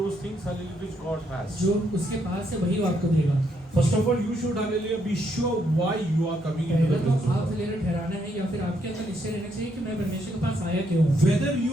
those things, hallelujah, which God has. जो उसके पास है वही वो आपको देगा. First of all, you should, hallelujah, be sure why you are coming into पहले the तो presence of आप God. लेकर ठहराना है या फिर आपके अंदर निश्चय रहना चाहिए कि मैं परमेश्वर के पास आया क्यों हूँ. Whether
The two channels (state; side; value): normal; both; correlation 0.75